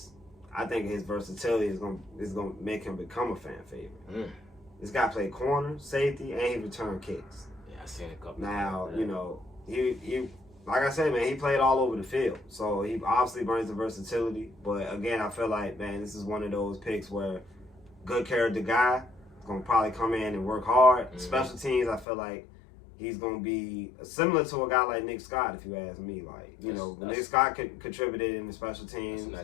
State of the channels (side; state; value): right; drops out; at 22.1 s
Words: I think his versatility is gonna make him become a fan favorite. This guy played corner, safety, and he returned kicks. Yeah, I seen a couple. Now, you know, he like I said, man, he played all over the field, so he obviously brings the versatility. But again, I feel like, man, this is one of those picks where good character guy is gonna probably come in and work hard. Mm-hmm. Special teams, I feel like he's going to be similar to a guy like Nick Scott, if you ask me. Like, you know, Nick Scott contributed in the special teams. That's a